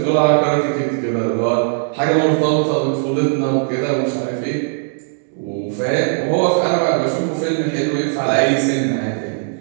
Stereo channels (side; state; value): left; silent; digital silence